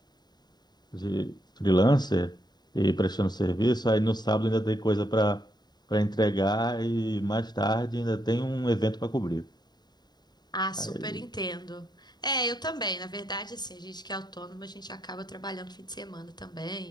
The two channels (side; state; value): right; late; 0.20 ms